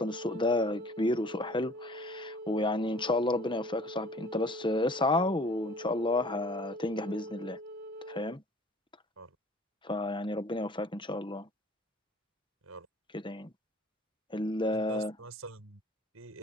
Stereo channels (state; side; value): normal; both; correlation 0.51